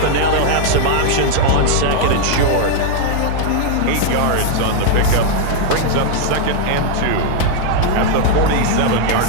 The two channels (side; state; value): both; different; correlation 0.00